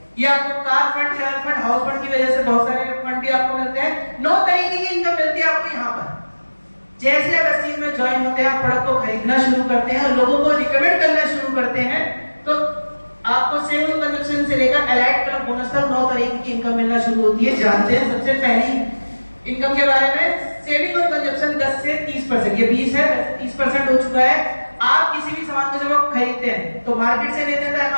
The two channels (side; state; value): both; inverted; correlation -1.00